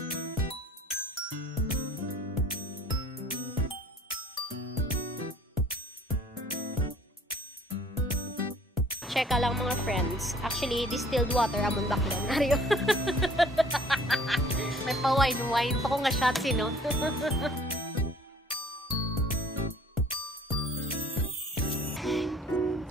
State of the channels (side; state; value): both; normal; correlation 0.53